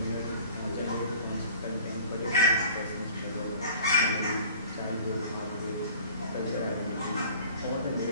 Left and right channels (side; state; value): both; inverted; correlation -0.48